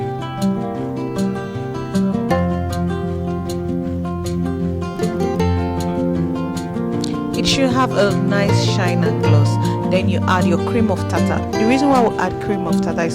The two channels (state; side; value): identical; both; correlation 1.00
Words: It should have a nice shine and gloss. Then you add your cream of tartar. The reason why we add cream of tartar